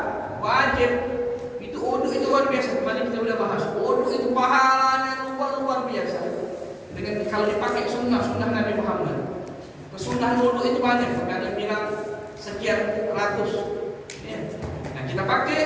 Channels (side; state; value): both; identical; correlation 1.00